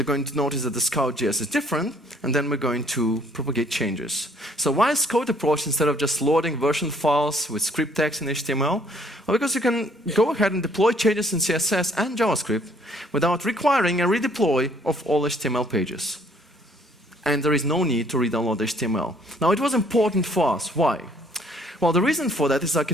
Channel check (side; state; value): both; normal; correlation 0.62